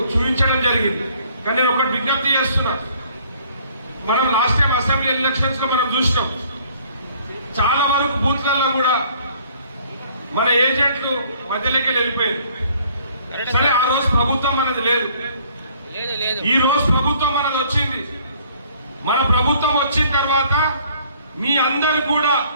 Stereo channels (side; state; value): both; inverted; correlation -0.59